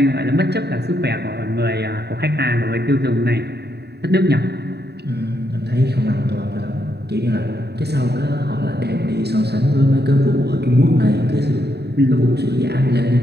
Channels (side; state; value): left; late; 0.48 ms